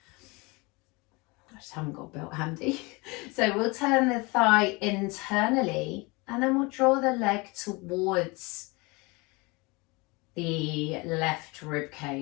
I just haven't got a belt handy. So we'll turn the thigh internally and then we'll draw the leg towards the left rib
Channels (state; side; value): quieter; right; 26.2 dB